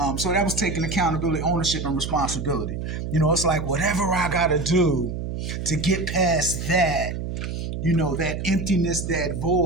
so that was taking accountability, ownership, and responsibility. You know, it's like whatever I got to do to get past that, you know, that emptiness, that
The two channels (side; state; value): right; noise; hum, 5 dB below the sound